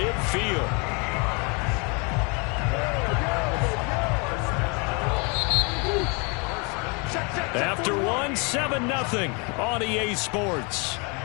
After one, 7-0 on EA Sports.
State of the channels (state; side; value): quieter; right; 32.2 dB